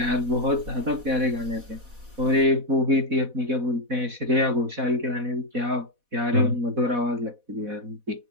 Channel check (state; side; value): late; left; 4.1 ms